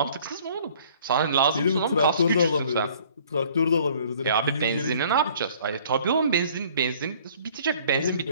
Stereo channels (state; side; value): inverted; both; correlation -0.55